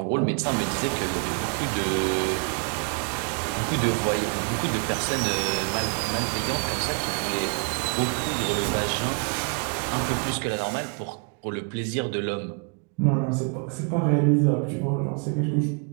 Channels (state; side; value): quieter; left; 37.9 dB